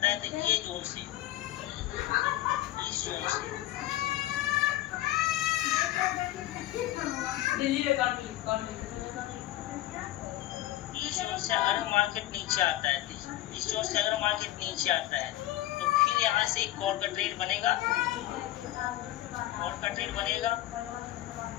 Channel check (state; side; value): quieter; right; 15.2 dB